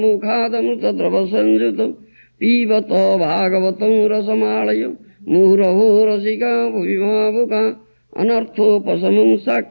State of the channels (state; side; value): inverted; both; correlation -1.00